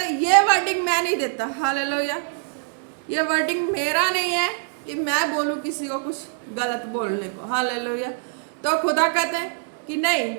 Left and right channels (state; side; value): silent; left; digital silence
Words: है ये वर्डिंग मैं नहीं देता। हालेलुया, ये वर्डिंग मेरा नहीं है कि मैं बोलूं किसी को कुछ गलत बोलने को। हालेलुया। तो खुदा कहते हैं कि